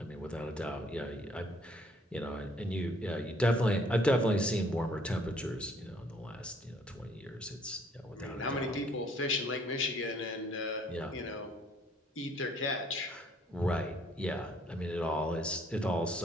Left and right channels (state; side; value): normal; both; correlation 0.62